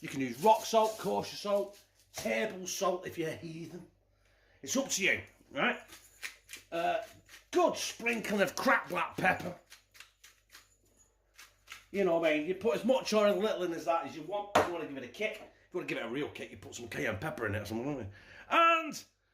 can use rock salt, kosher salt, table salt if you're a heathen. It's up to you, right? Good sprinkling of cracked black pepper. You know what I mean? You put as much or as little in as that as you want. If you want to give it a kick, if you want to give it a real kick, you put some cayenne pepper in it or something, don't you? And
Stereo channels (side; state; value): both; identical; correlation 1.00